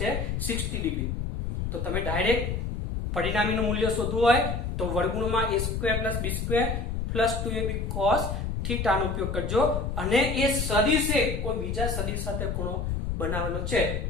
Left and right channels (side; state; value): left; noise; rumble, 2 dB below the sound